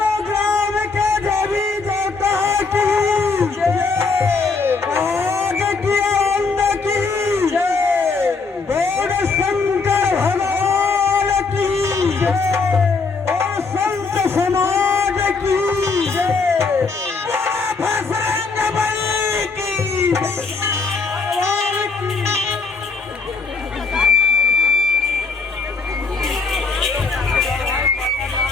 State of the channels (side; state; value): right; quieter; 4.4 dB